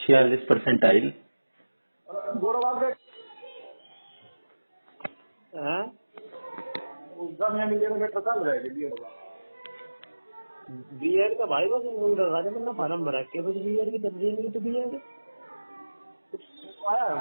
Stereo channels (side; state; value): both; inverted; correlation -1.00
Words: गोरा बात है हैं? जब मैं मिले तो बेटा चल जाएगा दिया होगा बीएड का भाई बस लगा दे, मतलब फार्म भरा के बस बीएड की तब्दील नहीं तो बीएड आया है